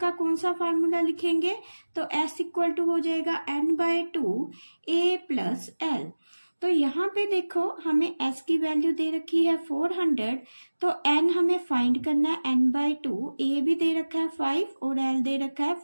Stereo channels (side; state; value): both; inverted; correlation -1.00